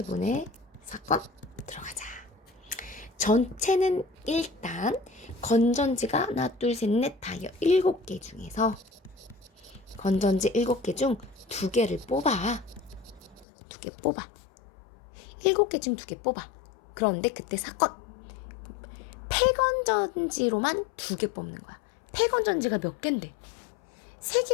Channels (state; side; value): drops out; right; at 13.5 s